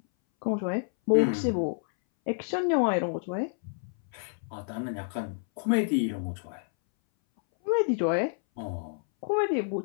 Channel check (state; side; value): silent; right; 59 dB below the other